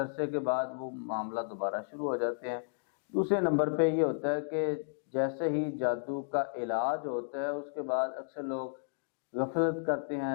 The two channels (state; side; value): silent; right; digital silence